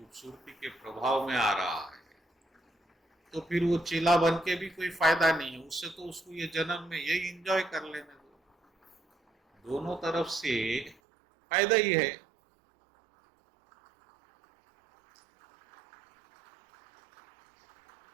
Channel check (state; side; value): drops out; left; at 11.0 s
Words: के प्रभाव में आ रहा है, तो फिर वो चेला बन के भी कोई फायदा नहीं है, उससे तो उसको ये जन्म में यही एंजॉय कर लेने दो। दोनों तरफ से फायदा ही है।